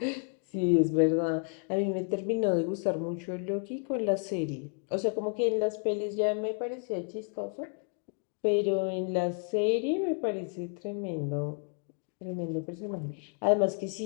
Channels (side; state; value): right; quieter; 40.0 dB